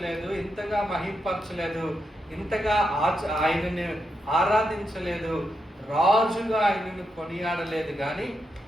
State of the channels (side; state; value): both; normal; correlation 0.84